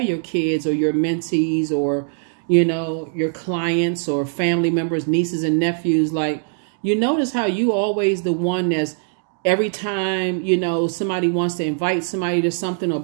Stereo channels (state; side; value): silent; left; digital silence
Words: kids or your mentees or, you know, your clients or family members, nieces and nephews, like, you notice how you always the one that's every time, you know, somebody wants to invite somebody to something or